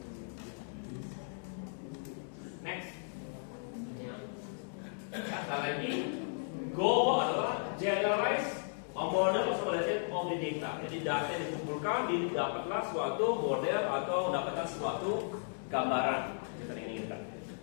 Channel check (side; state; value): right; silent; digital silence